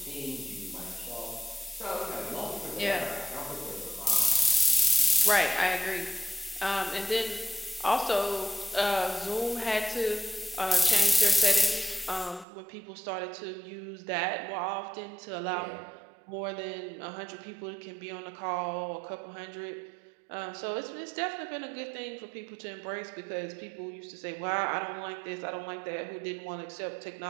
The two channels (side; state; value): left; drops out; at 12.5 s